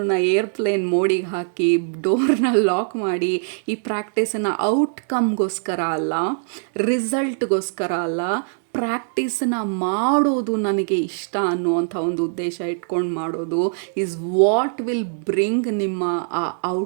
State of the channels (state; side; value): silent; left; 64 dB below the other